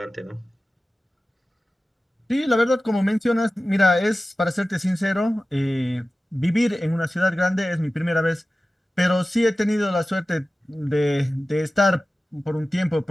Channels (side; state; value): both; normal; correlation 0.95